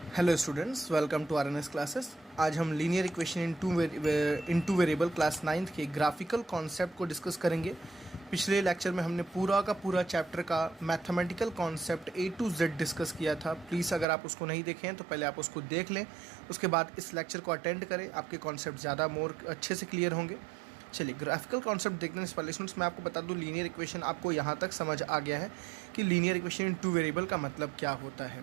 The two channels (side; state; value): left; drops out; at 14.1 s